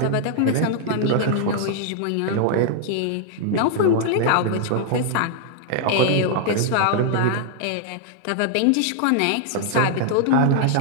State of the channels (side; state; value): both; different; correlation -0.01